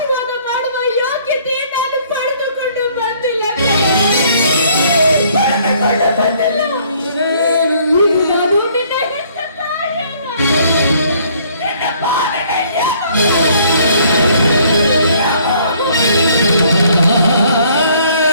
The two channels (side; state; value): both; inverted; correlation -0.61